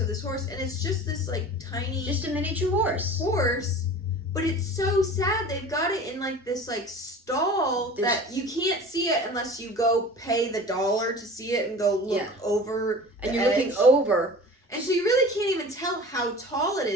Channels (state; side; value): normal; both; correlation 0.39